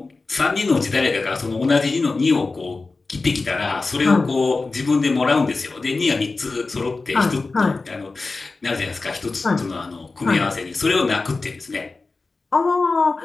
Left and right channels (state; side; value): quieter; right; 3.8 dB